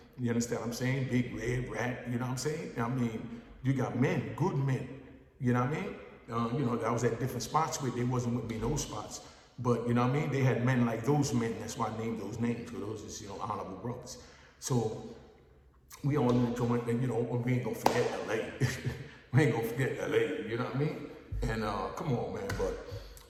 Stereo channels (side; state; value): both; identical; correlation 1.00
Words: You understand what I'm saying? Big Red Rat, you know what I'm saying? I mean, you got men, good men. You know what I mean? I was at different spots where they wasn't with me in those spots. But, you know what I mean? They had men like those men. That's why I named those names, because those is, honorable brothers. So we all in the joint, and we ain't gonna forget LA. We ain't gonna forget LA, you know what I mean? And come on, man, but